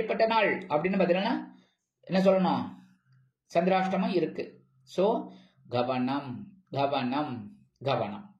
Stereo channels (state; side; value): identical; both; correlation 1.00